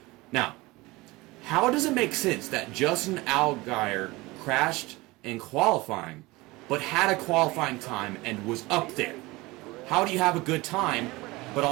Now, how does it make sense that Justin Allgaier crashed in qualifying, but had a qualifying time and was up there? How do you have a good time, but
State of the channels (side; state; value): left; quieter; 21.7 dB